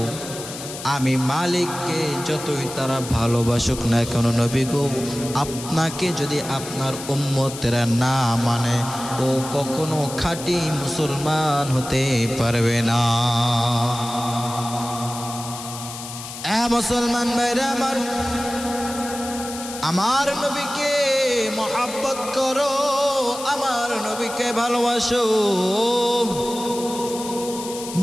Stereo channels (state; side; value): noise; left; hiss, 11 dB below the sound